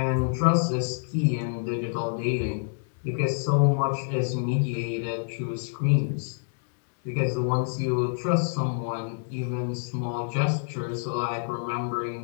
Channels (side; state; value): right; silent; digital silence